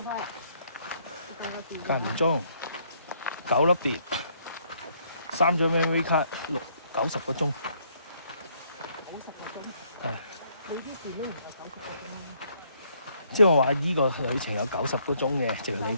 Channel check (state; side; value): inverted; both; correlation -0.68